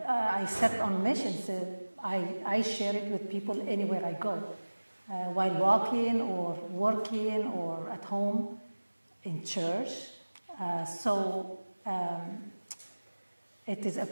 I set on missions. I share it with people anywhere I go, while walking or working or at home, in church. It is a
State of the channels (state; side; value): inverted; both; correlation -1.00